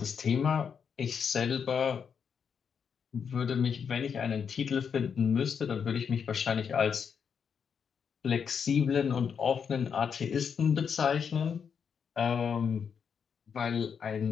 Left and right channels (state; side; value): quieter; right; 6.9 dB